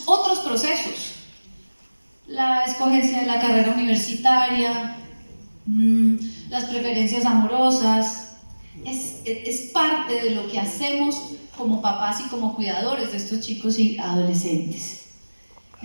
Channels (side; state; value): both; inverted; correlation -1.00